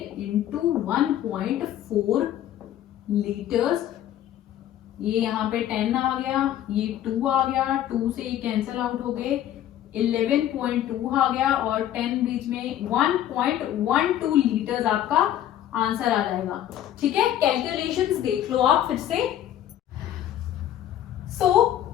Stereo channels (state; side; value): quieter; right; 11.8 dB